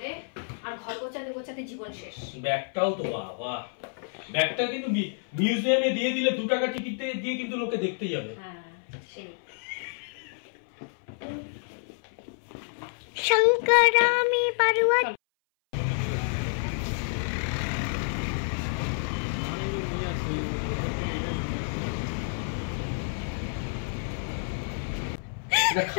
আর ঘর গোছাতে জীবন শেষ। ব্যাগটাও তো বাবা, ব্যাগটা কিন্তু মিউজিয়ামে দিয়ে দিলে 2 টাকা টিকিট দিয়ে কিন্তু লোকে দেখতে যাবে। হ্যাঁ সেই শঙ্করামি পারুয়া। এটা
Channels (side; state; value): right; silent; 58 dB below the other